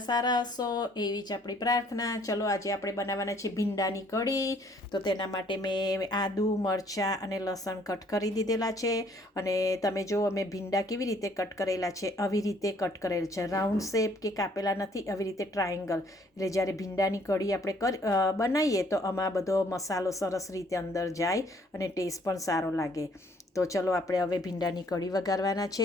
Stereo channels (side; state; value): both; normal; correlation 0.62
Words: સારા હશો એવી જ આપણી પ્રાર્થના. ચલો આજે આપણે બનાવવાના છે ભીંડાની કઢી. તો તેના માટે મેં આદુ, મરચાં અને લસણ કટ કરી દીધેલા છે. અને તમે જો અમે ભીંડા કેવી રીતે કટ કરેલા છે, આવી રીતે કટ કરેલ છે. રાઉન્ડ શેપ કે કાપેલા નથી, આવી રીતે ટ્રાયેંગલ. એટલે જ્યારે ભીંડાની કઢી આપણે બનાવીએ તો આમાં બધો મસાલો સરસ રીતે અંદર જાય અને ટેસ્ટ પણ સારો લાગે. તો ચલો આપણે હવે ભીંડાની કઢી વઘારવાના